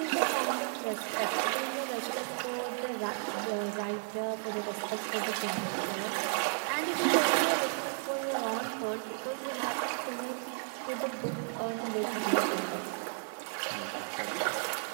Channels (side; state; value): left; silent; digital silence